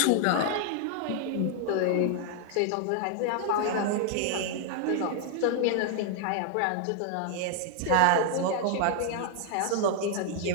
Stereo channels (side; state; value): both; different; correlation 0.00